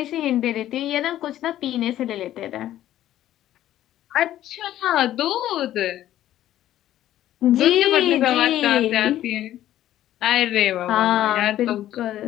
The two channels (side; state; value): right; quieter; 12.9 dB